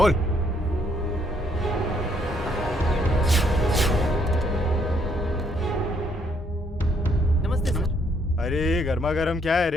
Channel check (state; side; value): normal; both; correlation 0.69